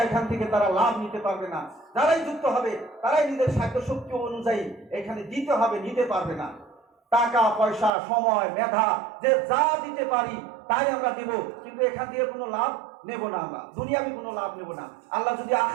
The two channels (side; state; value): left; drops out; at 7.9 s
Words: এখান থেকে তারা লাভ নিতে পারবে না। যারাই যুক্ত হবে তারাই নিজের সাধ্যশক্তি অনুযায়ী এখানে দিতে হবে, নিতে পারবে না। টাকা পয়সা সময় মেধা যে যা দিতে পারি তাই আমরা দিব, কিন্তু এখান দিয়ে কোনো লাভ নেব না, আমরা দুনিয়াবি কোনো লাভ নেব না। আল্লাহ যদি